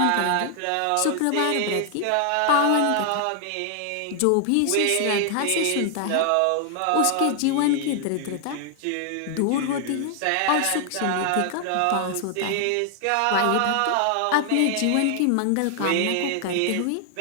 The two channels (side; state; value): both; different; correlation 0.00